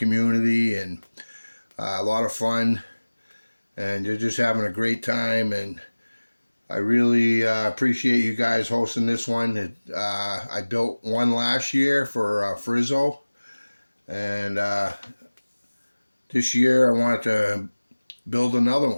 and a lot of fun, and you're just having a great time. And I really appreciate you guys hosting this one. I built one last year for Frizzo, and this year I wanted to build another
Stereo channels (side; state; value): both; inverted; correlation -1.00